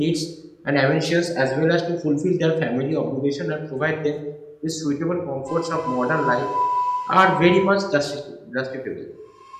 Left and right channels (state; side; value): identical; both; correlation 1.00